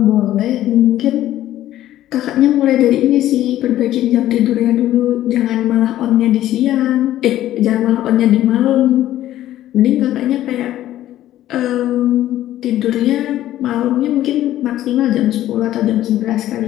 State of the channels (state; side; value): quieter; right; 13.4 dB